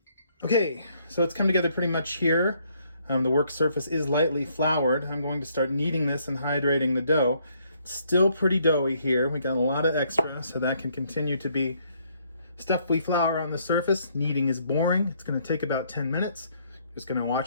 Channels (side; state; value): both; inverted; correlation -0.69